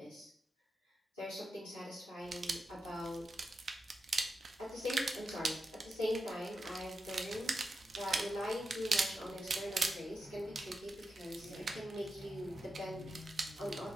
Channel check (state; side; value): normal; both; correlation 0.88